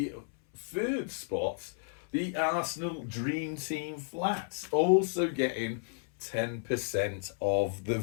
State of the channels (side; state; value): right; silent; 56 dB below the other